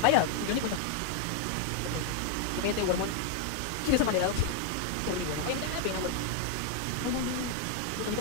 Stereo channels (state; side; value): different; both; correlation 0.00